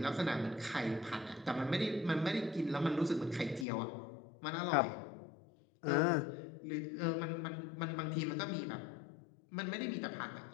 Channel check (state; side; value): drops out; right; at 3.7 s